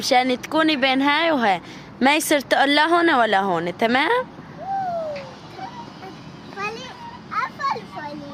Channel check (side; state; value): both; identical; correlation 1.00